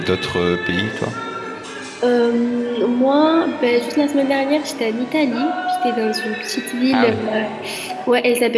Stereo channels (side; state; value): both; identical; correlation 1.00